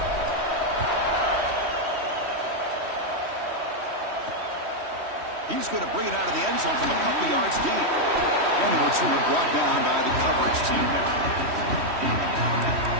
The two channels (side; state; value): left; late; 3.1 ms